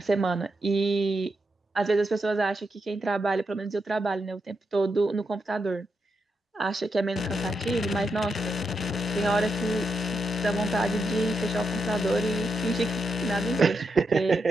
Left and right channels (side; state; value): both; normal; correlation 0.84